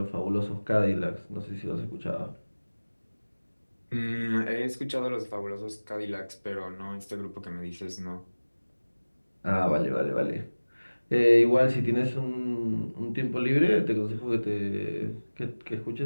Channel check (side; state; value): both; inverted; correlation -1.00